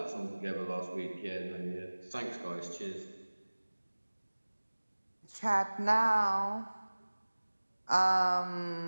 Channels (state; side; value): inverted; both; correlation -1.00